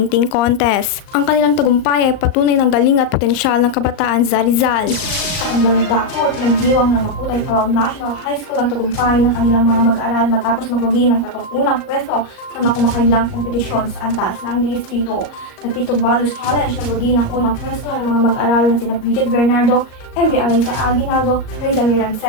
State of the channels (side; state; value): right; late; 38 ms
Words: Contest. Ang kanilang tagumpay ay patunay ng galing at potensyal ng kabataan sa Rizal. Sa kabilang dako, pinagdiwang ng Makutay Pawang National High School ang tagumpay ng kanilang mga mag-aaral matapos magwagi ng 31 pwesto sa makumakailang kompetisyon sa antas ng distrito. Nagtitog Values Challenge nagwagi ng unang pwesto ng mga mag-aaral na sina Bridget Bernardo, MJ Aliza Aguinaldo, Reza